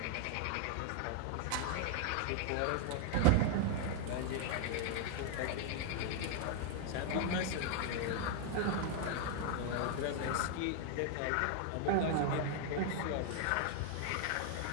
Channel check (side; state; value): both; different; correlation 0.00